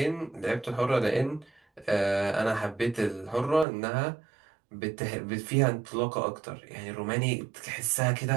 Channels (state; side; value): drops out; left; at 3.7 s